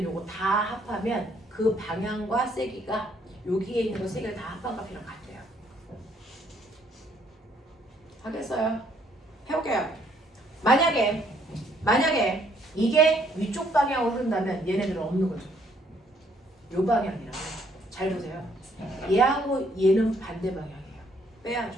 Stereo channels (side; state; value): both; normal; correlation 0.67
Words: 요거 다 합하면 그 방향과 세기가 여기에 있는 거 세 개를 다 합한 값이랑 같대요. 하겠어요? 해볼게요. 만약에 이게 위쪽 방향으로 흐른다면 얘네들은 없는 거죠. 요 방향이라고. 잘 보세요. 얘하고 얘는 반대 방향이에요.